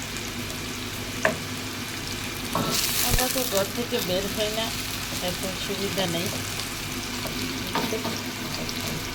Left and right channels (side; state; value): both; identical; correlation 1.00